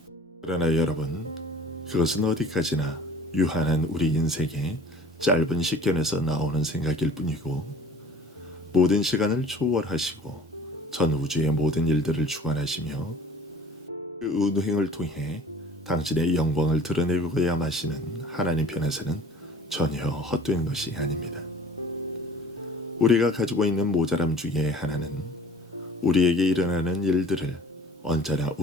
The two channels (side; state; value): both; normal; correlation 0.47